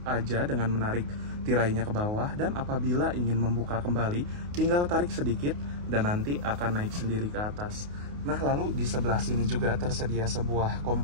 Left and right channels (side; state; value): left; late; 28 ms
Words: aja dengan menarik tirainya ke bawah, dan apabila ingin membuka kembali, tinggal tarik sedikit dan nanti akan naik sendiri ke atas. Nah, lalu di sebelah sini juga tersedia sebuah